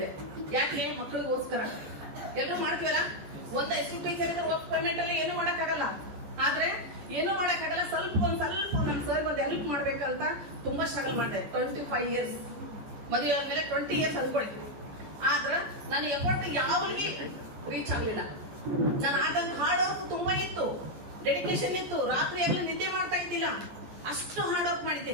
ಯಾಕೆ? ಮಕ್ಕಳಿಗೋಸ್ಕರ. ಎಲ್ಲರೂ ಮಾಡ್ತೀವಲ್ಲ, ಒಂದ್ ಹೈಸ್ಕೂಲ್ ಟೀಚರ್ ಇದ್ರೆ ವರ್ಕ್ ಪೇಮೆಂಟ್ ಅಲ್ಲಿ ಏನು ಮಾಡಕ್ಕಾಗಲ್ಲ. ಆದ್ರೆ ಏನು ಮಾಡಕ್ಕಾಗಲ್ಲ, ಒಂದ್ ಸ್ವಲ್ಪ ನಮ್ ಸರ್ ಒಂದು ಹೆಲ್ಪ್ ಮಾಡ್ಬೇಕಂತ ತುಂಬಾ ಸ್ಟ್ರಗಲ್ ಮಾಡಿದೆ. 25 ಇಯರ್ಸ್ ಮದುವೆ ಆದ್ಮೇಲೆ 20 ಇಯರ್ಸ್ ಅನ್ಕೊಳ್ಳಿ. ಆದ್ರೆ ನನ್ನ ಎಫರ್ಟ್ ಯಾವ್ಲಿಗೆ ರೀಚ್ ಆಗ್ಲಿಲ್ಲ. ನಾನು ಆದಂತ ಹಾರ್ಡ್ ವರ್ಕ್ ತುಂಬಾ ಇತ್ತು, ಡೆಡಿಕೇಶನ್ ಇತ್ತು. ರಾತ್ರಿ ಎಲ್ಲ ನಿದ್ದೆ ಮಾಡ್ತಾ ಇದ್ದಿಲ್ಲ, ಅಷ್ಟು ಹಾರ್ಡ್ ವರ್ಕ್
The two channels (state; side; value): late; left; 14 ms